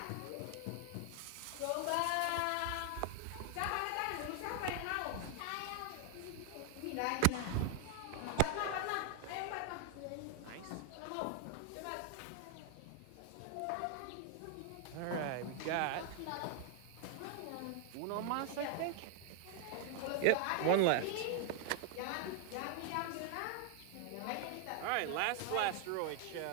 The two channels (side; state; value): both; different; correlation 0.00